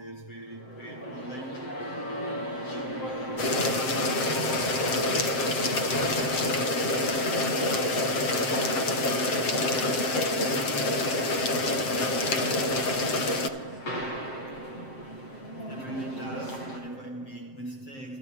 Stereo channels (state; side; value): late; right; 7.6 ms